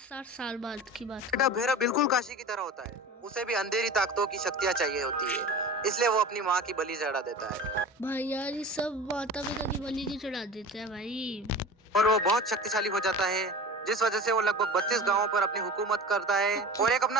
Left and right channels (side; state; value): both; normal; correlation 0.35